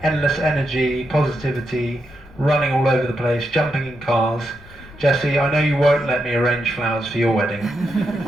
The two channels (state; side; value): noise; left; rumble, 21 dB below the sound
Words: endless energy, positivity, running all over the place, jumping in cars. Jessie, I know you won't let me arrange flowers for your wedding,